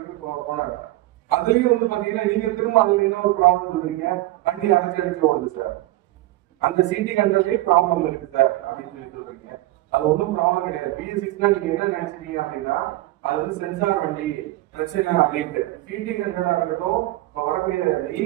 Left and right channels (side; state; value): left; quieter; 17.0 dB